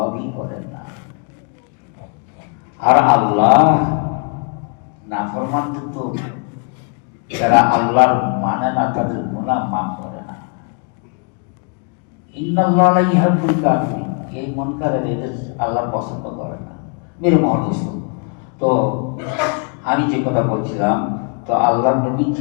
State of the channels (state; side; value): quieter; right; 38.5 dB